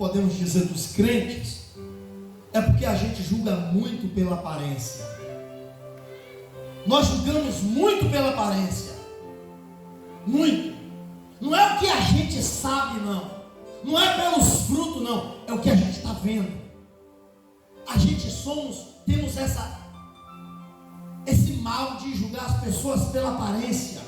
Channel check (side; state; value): both; identical; correlation 1.00